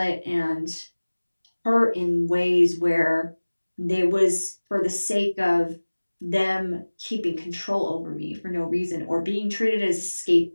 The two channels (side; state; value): both; inverted; correlation -1.00